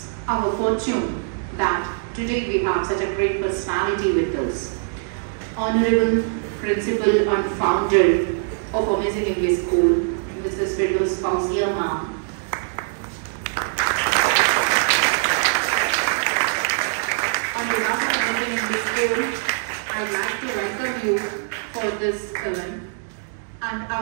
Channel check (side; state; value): left; silent; digital silence